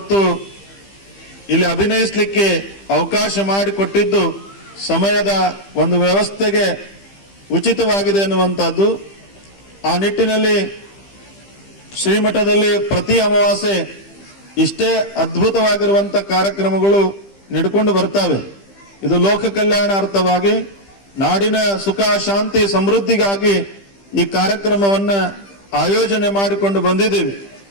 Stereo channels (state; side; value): late; right; 15 ms